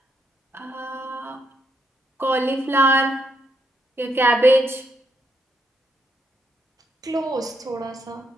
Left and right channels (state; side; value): normal; both; correlation 0.77